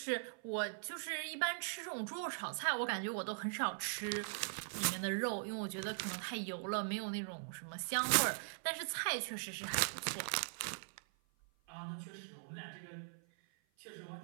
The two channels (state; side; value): silent; left; 50 dB below the other